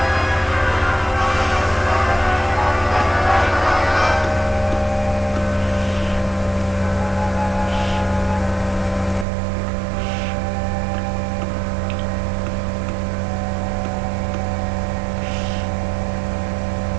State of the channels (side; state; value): left; drops out; at 9.2 s